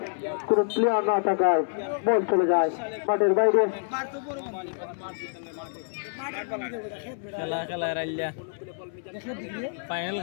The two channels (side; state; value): right; silent; 59 dB below the other